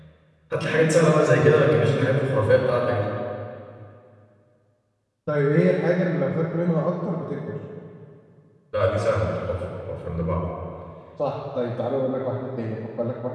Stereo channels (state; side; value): identical; both; correlation 1.00